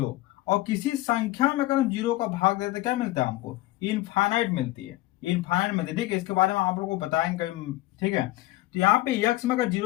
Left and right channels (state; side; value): quieter; right; 17.8 dB